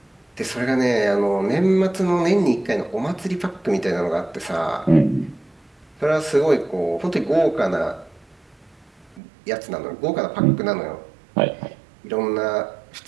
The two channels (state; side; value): drops out; left; at 9.2 s